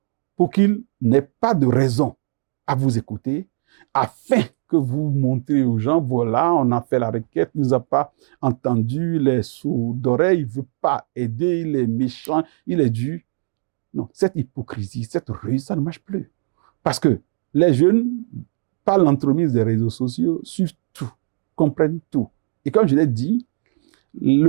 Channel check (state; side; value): silent; left; digital silence